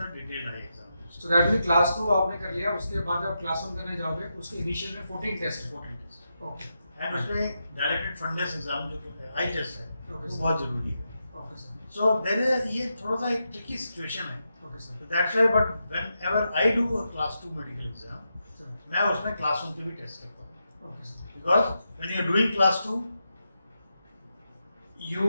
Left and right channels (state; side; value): inverted; both; correlation -0.86